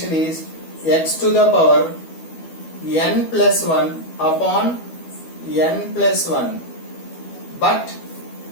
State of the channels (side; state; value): right; late; 12 ms